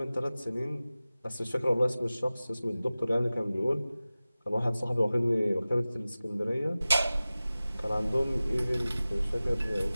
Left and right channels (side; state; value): both; inverted; correlation -0.97